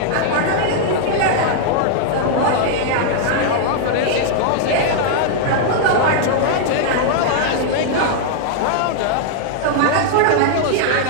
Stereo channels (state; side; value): different; both; correlation -0.01